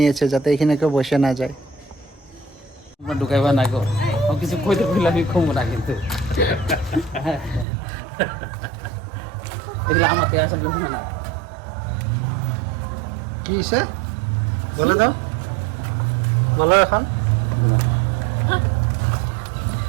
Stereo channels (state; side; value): drops out; left; at 7.7 s